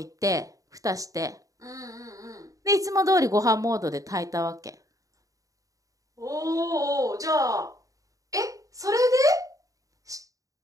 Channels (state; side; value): late; left; 0.16 ms